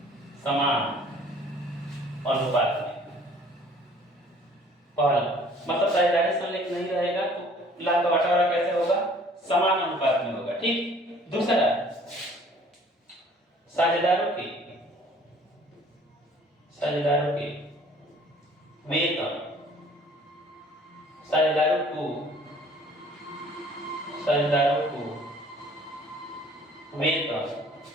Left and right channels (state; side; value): normal; both; correlation 0.54